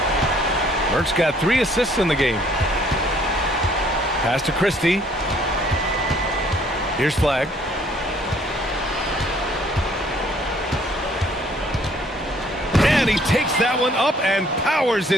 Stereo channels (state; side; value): normal; both; correlation 0.61